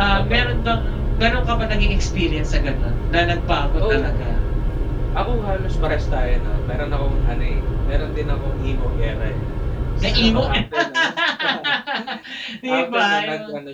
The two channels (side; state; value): both; identical; correlation 1.00